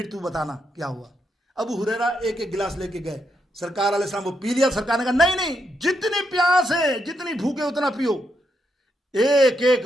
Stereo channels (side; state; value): both; normal; correlation 0.80